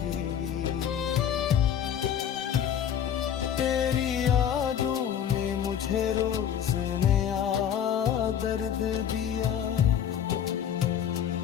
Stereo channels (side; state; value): right; quieter; 9.2 dB